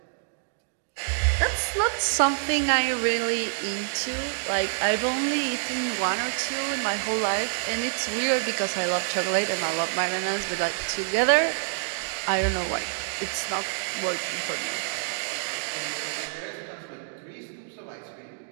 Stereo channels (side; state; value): left; silent; 60 dB below the other